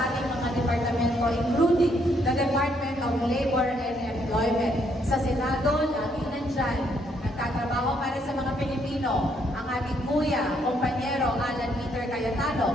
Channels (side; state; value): both; normal; correlation 0.71